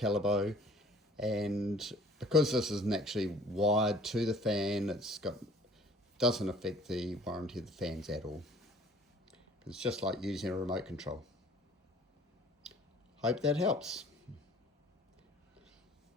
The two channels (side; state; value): both; normal; correlation 0.52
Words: and because this isn't actually wired to the fan, doesn't affect the warranty of the fans at all. It's just like using a remote control. Hope that helps.